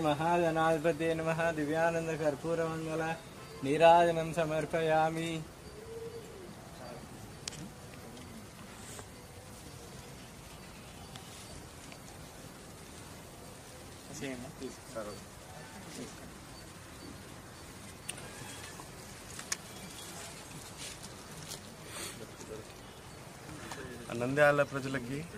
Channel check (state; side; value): identical; both; correlation 1.00